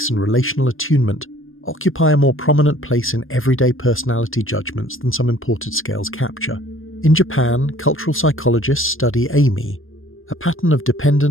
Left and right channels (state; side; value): late; right; 0.60 ms